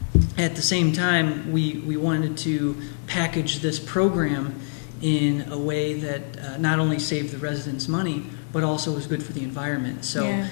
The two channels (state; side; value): silent; right; digital silence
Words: at the same time, we wanted to package this program in a way that not only saved the residents money, but also was good for the environment. So